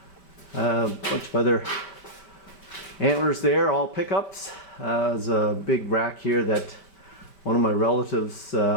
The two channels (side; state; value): right; late; 5.1 ms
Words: Bunch of other antlers there, all pickups. There's a big rack here that one of my relatives